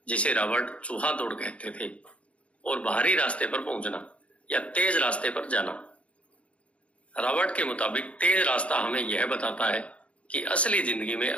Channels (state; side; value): late; right; 0.062 ms